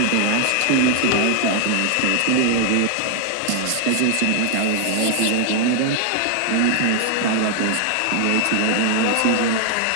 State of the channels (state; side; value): different; both; correlation 0.00